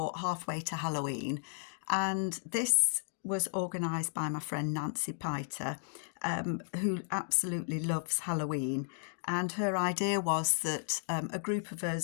halfway to Halloween, and this was organised by my friend Nancy Piter, who absolutely loves Halloween. And her idea was that a group of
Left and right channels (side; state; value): right; silent; digital silence